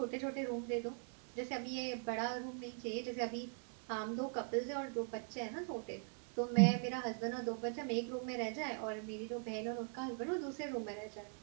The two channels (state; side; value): silent; left; 50 dB below the other